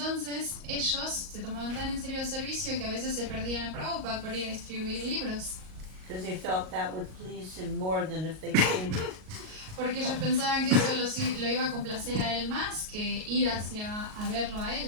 ellos se tomaban tan en serio el servicio que a veces se perdían a Prabhupada por ir a distribuir libros, Because they felt that would please him more than if they came. porque ellos pensaban que eso lo iba a complacer a él más que ir hacia a verlo a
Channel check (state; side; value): late; left; 38 ms